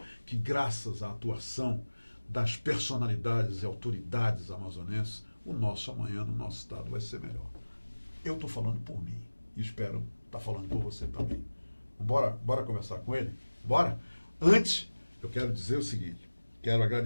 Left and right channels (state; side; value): inverted; both; correlation -1.00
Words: que graças à atuação das personalidades e autoridades amazonenses, o nosso amanhã no nosso estado vai ser melhor. Eu estou falando por mim. E espero estar falando por você também. Bora conversar com ele? Bora? Antes, eu quero dizer o seguinte. Quero